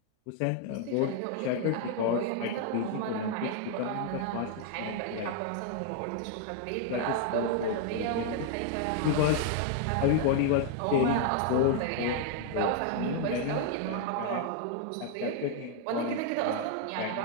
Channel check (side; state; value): both; different; correlation 0.00